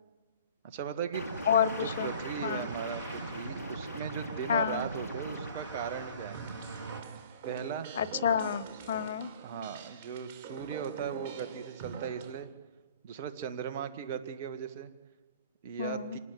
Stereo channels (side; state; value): both; inverted; correlation -0.48